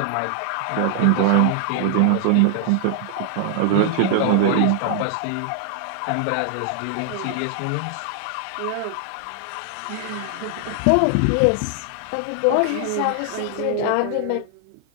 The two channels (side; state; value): both; different; correlation 0.00